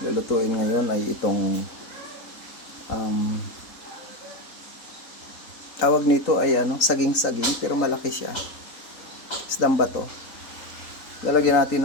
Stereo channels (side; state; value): right; late; 3.8 ms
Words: lulutuin ngayon ay itong tawag nito ay saging-saging pero malaki siya. Isdang bato. Lalagyan